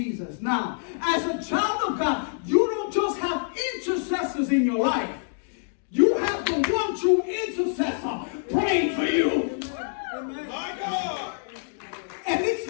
Now, as a child of God, you don't just have intercessors in your life. You have the one true intercessor praying for you. My God. And it's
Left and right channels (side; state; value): right; silent; digital silence